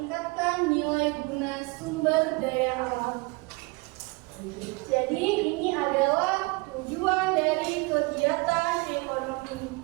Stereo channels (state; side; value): quieter; left; 26.8 dB